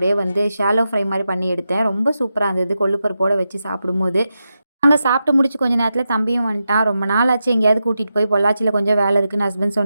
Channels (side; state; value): both; inverted; correlation -0.89